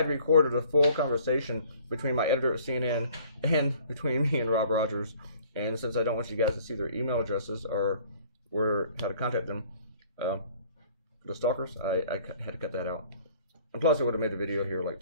recorded a full conversation between my editor at CNN and between me and Rob Rogers. And since I don't want you guys to see their email addresses or how to contact them, the stalkers, I had to cut that out. And plus, it would have made the video here like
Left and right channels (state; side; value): inverted; both; correlation -0.55